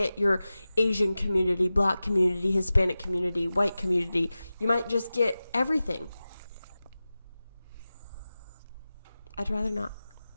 your Asian community, black community, Hispanic community, white community. You might just get everything. I'd rather not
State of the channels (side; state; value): both; inverted; correlation -0.95